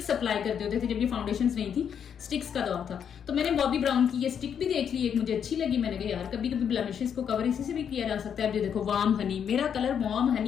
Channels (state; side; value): quieter; right; 8.0 dB